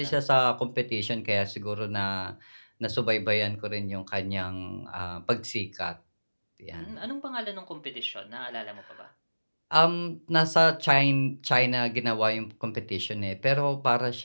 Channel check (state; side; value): inverted; both; correlation -1.00